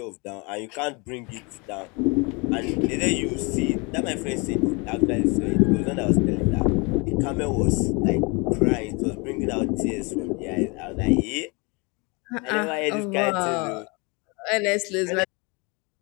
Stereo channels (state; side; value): quieter; right; 29.4 dB